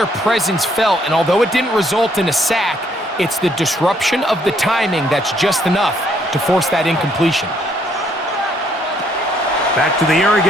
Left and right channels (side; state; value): both; normal; correlation 0.68